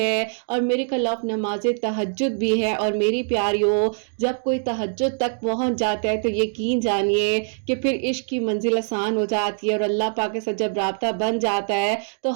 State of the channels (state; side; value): silent; left; 63 dB below the other